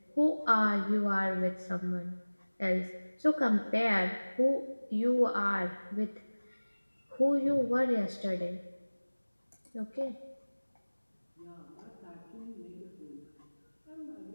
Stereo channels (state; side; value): inverted; both; correlation -1.00